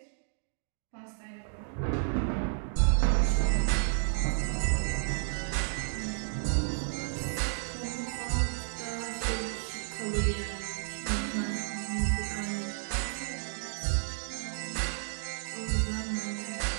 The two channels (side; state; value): left; silent; digital silence